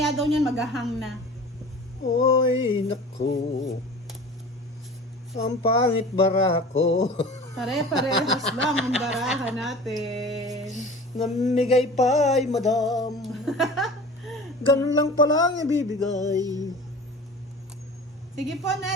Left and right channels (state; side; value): normal; both; correlation 0.39